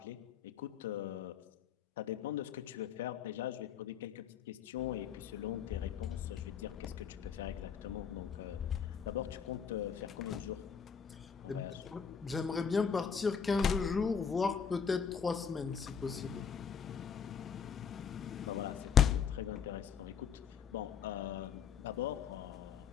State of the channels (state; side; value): quieter; right; 7.0 dB